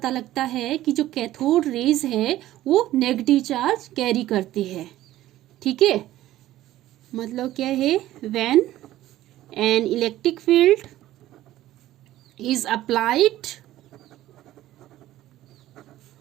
लगता है कि जो कैथोड रेज है वो नेगेटिव चार्ज कैरी करती है। ठीक है, मतलब क्या है, when an electric field is applied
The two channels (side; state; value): left; quieter; 14.6 dB